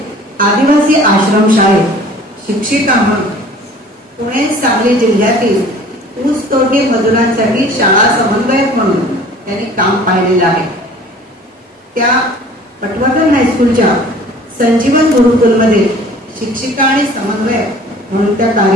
आदिवासी आश्रमशाळेत शिक्षिका म्हणून, पुणे सांगली जिल्ह्यातील ऊसतोडणी मजुरांसाठी शाळा समन्वयक म्हणून त्यांनी काम पाहिलेलं आहे. त्या पटवर्धन हायस्कूलच्या संजीवन गुरुकुलमध्ये शिक्षिका आणि समन्वयक म्हणून त्या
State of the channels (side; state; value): both; normal; correlation 0.48